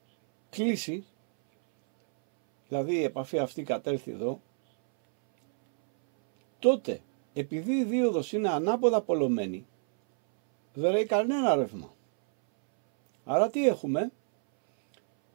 κλείσει, δηλαδή η επαφή αυτή κατέλθει εδώ, τότε επειδή η δίωδος είναι ανάποδα πολλωμένη, δεν ρέει κανένα ρεύμα. Άρα τι έχουμε?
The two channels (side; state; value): left; silent; 59 dB below the other